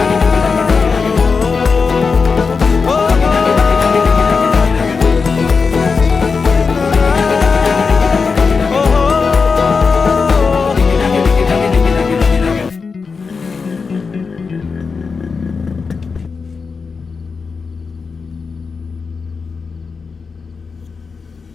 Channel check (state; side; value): quieter; right; 5.0 dB